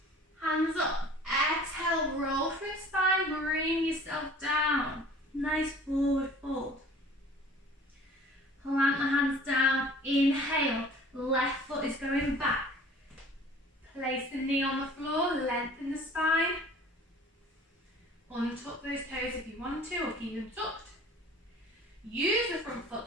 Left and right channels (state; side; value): normal; both; correlation 0.48